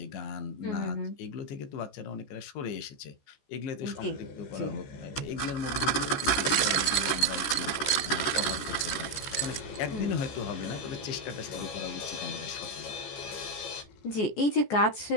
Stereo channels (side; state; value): right; late; 14 ms